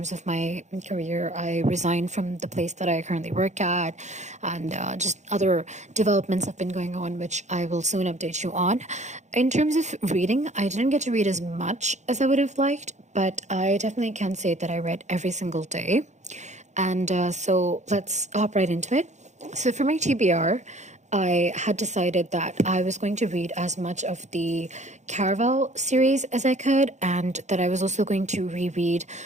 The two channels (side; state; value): left; late; 0.34 ms